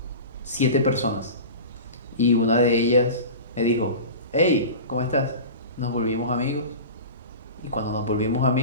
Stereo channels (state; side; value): inverted; both; correlation -0.33